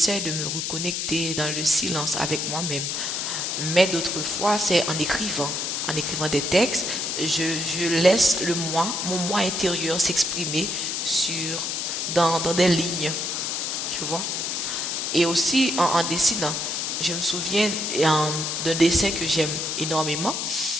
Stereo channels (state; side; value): noise; left; hiss, 2 dB below the sound